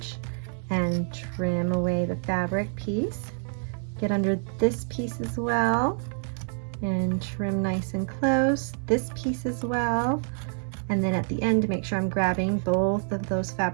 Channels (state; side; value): silent; left; digital silence